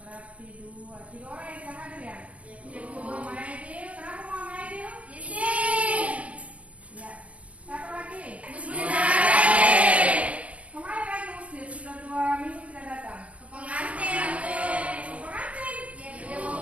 dua. Tiga orang yang tidak hadir ya? Iya, Bu. Muhammad Aidil. Kenapa Muhammad Aidil? Isin. Ya. Satu lagi? Bismillahirrahmanirrahim. Kemarin lagi Muslim sudah 2 minggu tidak datang. Pengantin, Bu. Pengantin? Iya, Bu.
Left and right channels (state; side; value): late; left; 0.065 ms